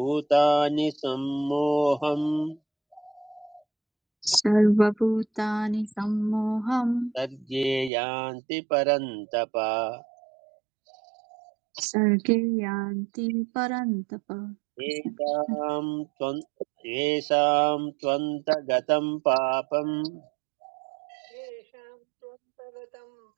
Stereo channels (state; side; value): drops out; left; at 7.9 s